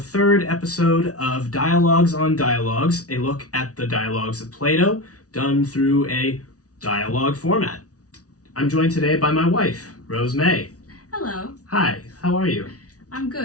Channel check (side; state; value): right; late; 0.67 ms